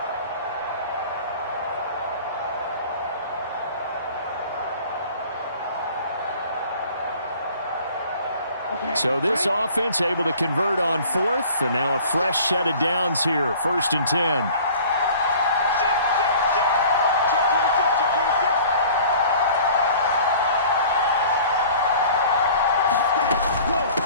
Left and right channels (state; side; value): inverted; both; correlation -0.48